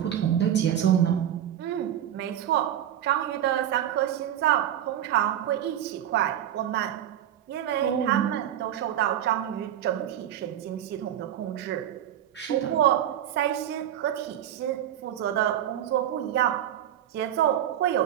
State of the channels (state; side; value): quieter; left; 10.9 dB